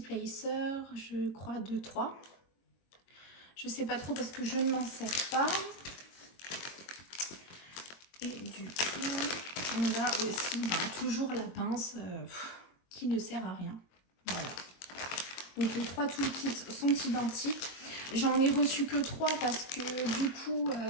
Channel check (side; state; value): right; late; 22 ms